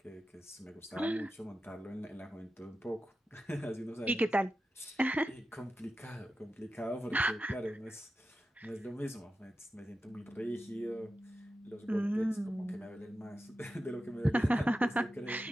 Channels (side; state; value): both; normal; correlation 0.91